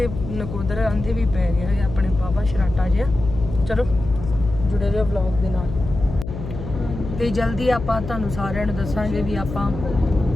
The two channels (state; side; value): noise; left; hum, 9 dB below the sound